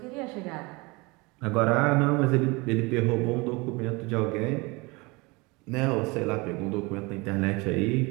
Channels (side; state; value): left; quieter; 25.7 dB